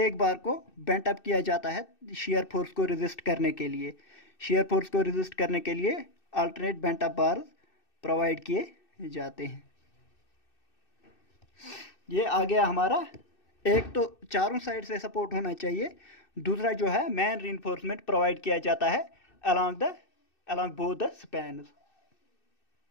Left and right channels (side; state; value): right; late; 2.6 ms